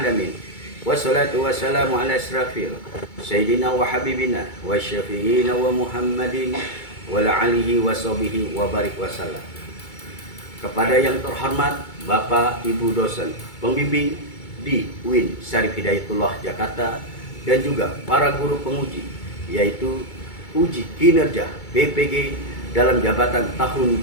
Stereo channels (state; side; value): late; right; 2.2 ms